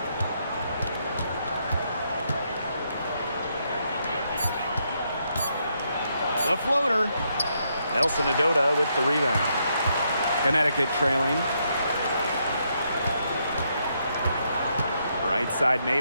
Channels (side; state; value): both; inverted; correlation -0.77